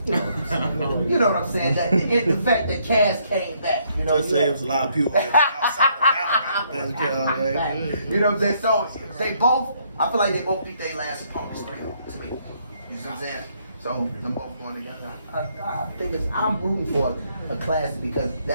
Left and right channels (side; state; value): both; inverted; correlation -0.70